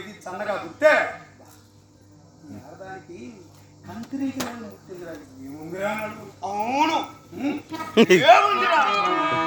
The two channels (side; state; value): both; identical; correlation 1.00